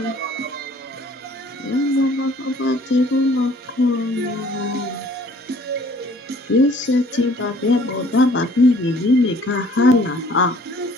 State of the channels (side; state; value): both; normal; correlation 0.55